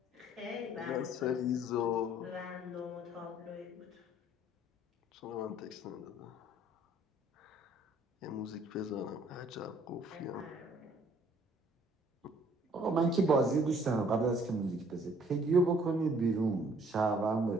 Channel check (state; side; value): normal; both; correlation 0.60